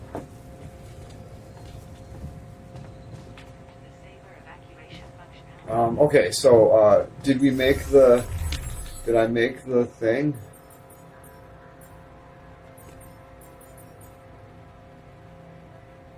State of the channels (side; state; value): both; identical; correlation 1.00